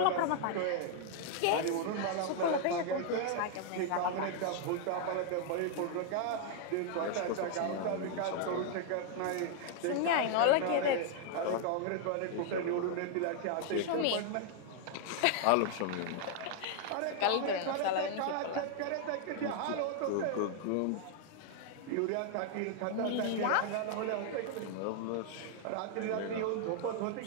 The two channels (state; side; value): different; both; correlation 0.00